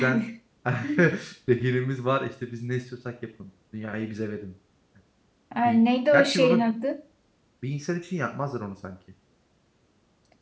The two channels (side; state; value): both; identical; correlation 1.00